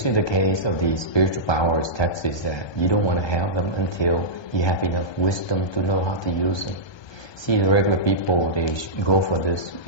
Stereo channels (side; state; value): right; late; 1.2 ms